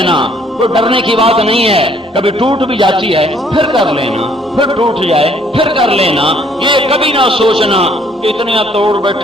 کوئی ڈرنے کی بات نہیں ہے، کبھی ٹوٹ بھی جاتی ہے پھر کر لینا، پھر ٹوٹ جائے پھر کر لینا۔ یہ کبھی نہ سوچنا کہ اتنا توڑ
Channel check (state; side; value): normal; both; correlation 0.63